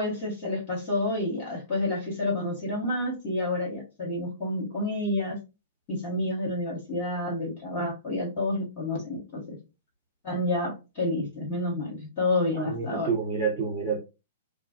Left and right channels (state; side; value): inverted; both; correlation -0.39